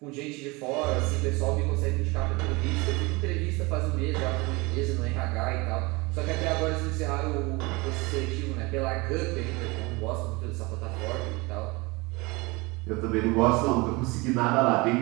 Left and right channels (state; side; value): quieter; left; 24.9 dB